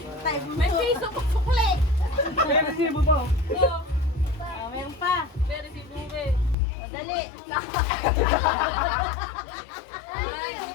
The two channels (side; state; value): right; drops out; at 6.6 s